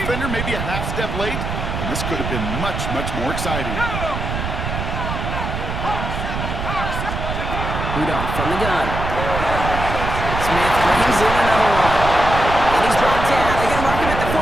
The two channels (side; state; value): right; noise; rumble, 4 dB below the sound